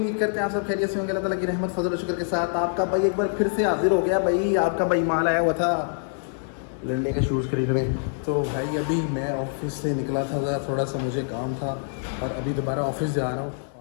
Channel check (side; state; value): right; silent; 62 dB below the other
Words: करते हैं आप सब खैरियत से होंगे। अल्लाह ताला की रहमत फजल और शुक्र के साथ आपका भाई एक बार फिर से हाजिर हो गया। भाई आपका भाई माल आया हुआ था लंडे के शूज़ खरीदने। तो भाई अभी मैं ऑफिस से निकला था, थोड़ा सा मुझे काम था और अभी दोबारा ऑफिस जा रहा हूँ।